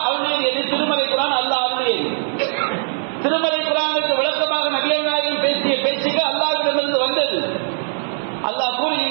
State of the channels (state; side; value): silent; left; 58 dB below the other